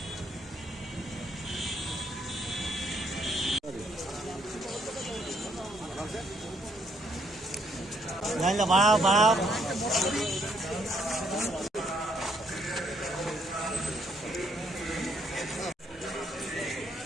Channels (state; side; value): normal; both; correlation 0.70